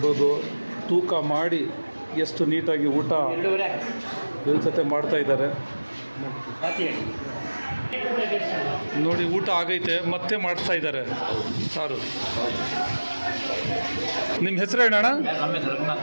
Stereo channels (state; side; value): inverted; both; correlation -1.00